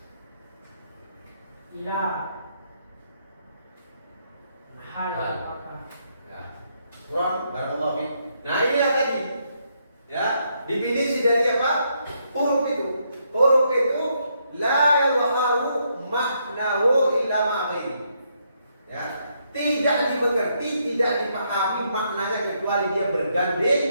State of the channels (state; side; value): inverted; both; correlation -0.76